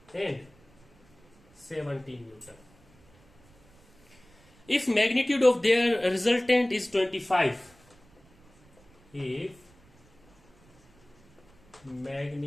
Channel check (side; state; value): right; noise; rumble, 30 dB below the sound